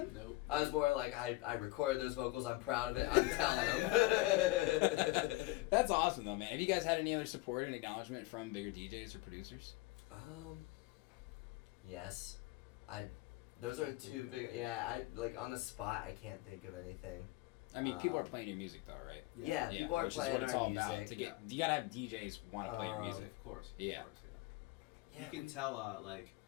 Nope. I was more like, I recorded those vocals. I'm proud of it. I'm telling them. That's awesome though, man. Have you guys had any other support and acknowledgement from bigger DJs or producers? Yes, those are two big. Yeah, on the spot, I can't think of anything. I mean, people are playing your music though, right? Yeah, people are which is playing what it's our all about. music. You gotta have DJs want to play your music. Of course. Yeah. Of course, Yeah, you can tell,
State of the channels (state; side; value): quieter; right; 20.2 dB